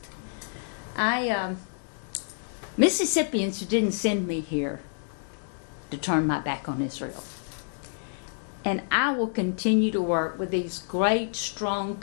Mississippians didn't send me here to turn my back on Israel. And I will continue to work with these great, strong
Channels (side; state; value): right; silent; digital silence